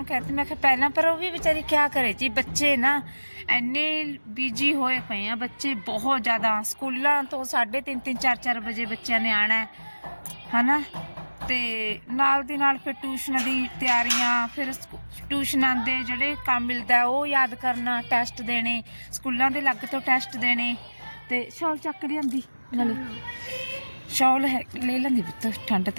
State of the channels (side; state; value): both; inverted; correlation -1.00